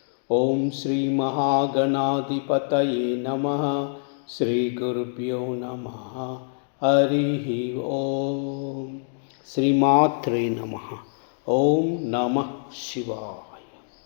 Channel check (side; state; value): right; silent; digital silence